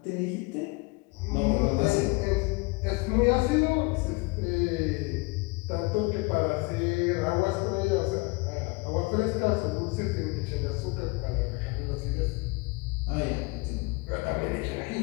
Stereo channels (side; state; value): right; quieter; 27.1 dB